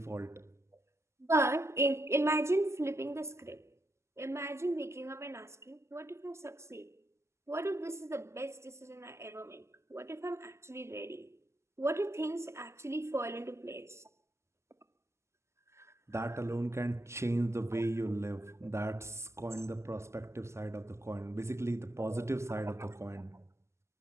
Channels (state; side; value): late; left; 0.13 ms